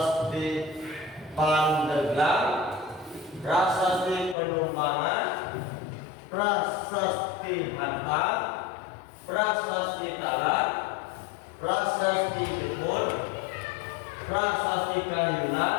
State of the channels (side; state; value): right; drops out; at 4.4 s